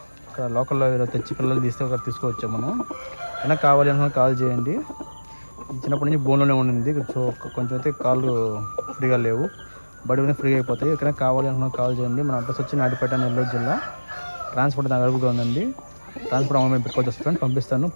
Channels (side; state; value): both; inverted; correlation -1.00